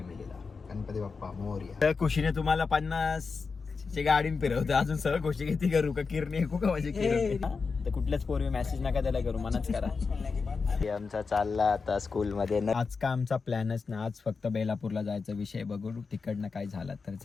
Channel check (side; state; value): right; quieter; 4.8 dB